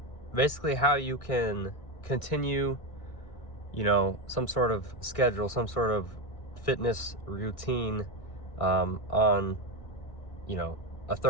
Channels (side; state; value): right; late; 1.6 ms